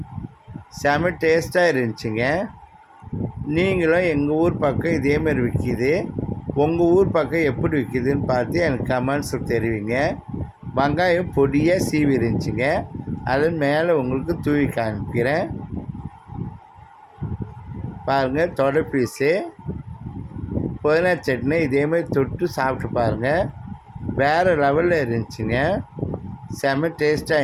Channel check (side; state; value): both; identical; correlation 1.00